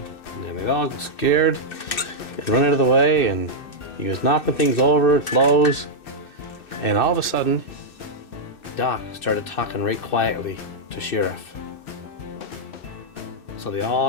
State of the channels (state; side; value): late; right; 2.6 ms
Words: And then they all got scared and run out of the way, and he was knocking things over, flows, and all of a sudden, Doc started talking right quietly to Sheriff. So they